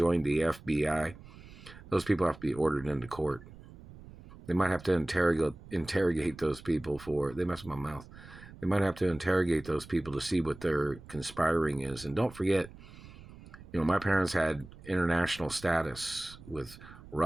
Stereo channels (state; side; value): noise; right; rumble, 18 dB below the sound